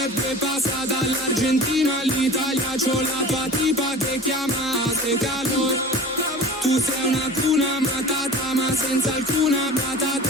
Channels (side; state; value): both; normal; correlation 0.39